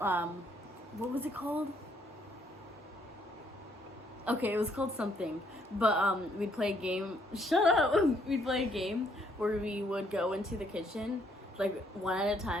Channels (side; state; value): both; normal; correlation 0.69